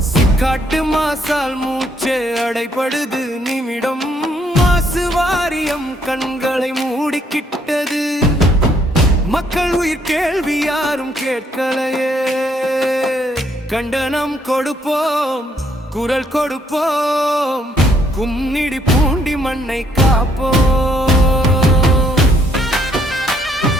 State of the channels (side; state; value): both; normal; correlation 0.69